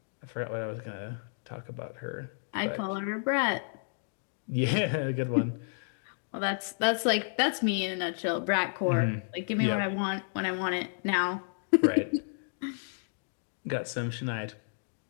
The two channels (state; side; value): silent; right; digital silence